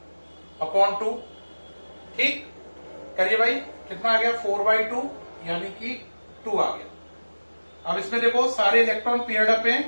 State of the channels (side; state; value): both; inverted; correlation -1.00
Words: अपॉन 2। ठीक, करिए भाई, कितना आ गया 4/2, यानी कि 2 आ गया। अब इसमें देखो सारे इलेक्ट्रॉन पेयर्ड अप हैं,